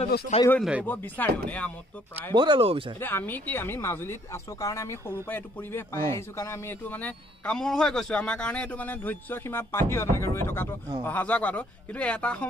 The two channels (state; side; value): normal; both; correlation 0.64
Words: এইটো স্থায়ী হৈ নাথাকিব বিচাৰে মানে আমোদটো প্ৰায় বহুতে ল'ব বিচাৰে আমি মাজুলীত আছো কাৰণে আমি সৰুৰ পৰা এইটো পৰিৱেশ পাই আহিছো কাৰণে আমি এইটো মানে কামৰ হৈ গৈছো আমাৰ কাৰণে এইটো মানে ধৈৰ্য্য সীমা পাহি তেনেকে ৰৈ থকাটো অহা যোৱা কৰাটো কিন্তু এটা